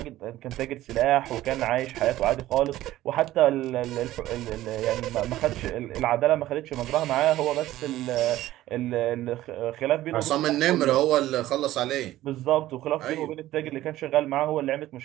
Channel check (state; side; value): quieter; left; 15.0 dB